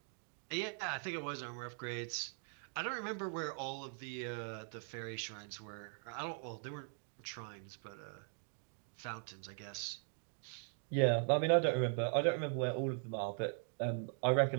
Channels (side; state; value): left; silent; 51 dB below the other